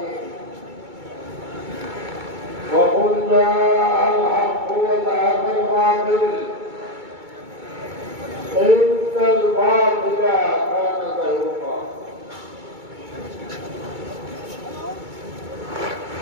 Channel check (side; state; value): left; late; 2.2 ms